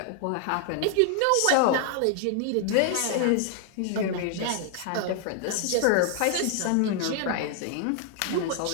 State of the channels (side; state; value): both; different; correlation 0.00